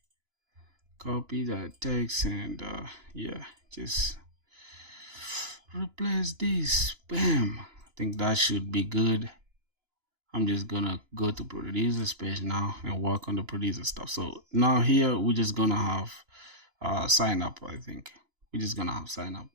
copy that text, and yeah, just replace this. Bam. I think that should be good. I'm just gonna go to producer's page now and work on the producer stuff. So now here we're just gonna have sign up. I think we're just gonna have sign up,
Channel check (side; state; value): left; late; 2.9 ms